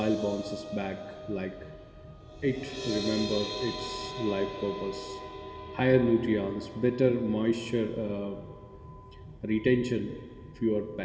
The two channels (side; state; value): both; identical; correlation 1.00